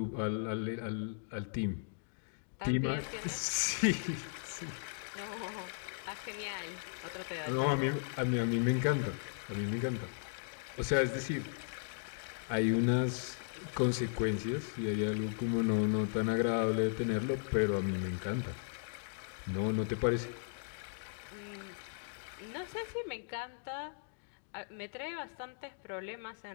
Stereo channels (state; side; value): silent; right; digital silence